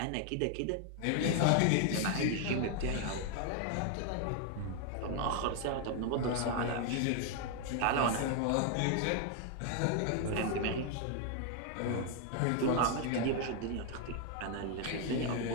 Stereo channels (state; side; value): different; both; correlation 0.00